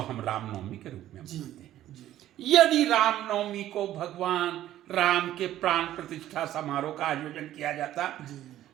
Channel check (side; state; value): left; quieter; 13.0 dB